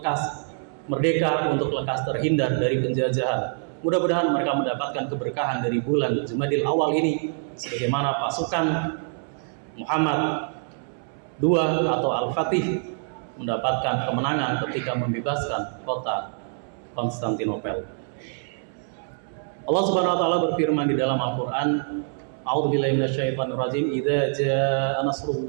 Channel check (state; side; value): silent; left; 62 dB below the other